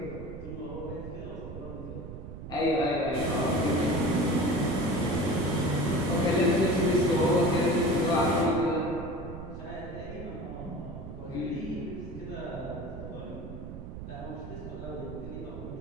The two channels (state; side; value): noise; right; rumble, 10 dB below the sound